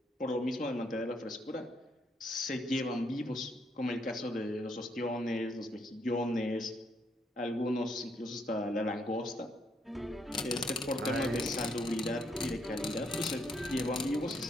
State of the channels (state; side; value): normal; both; correlation 0.74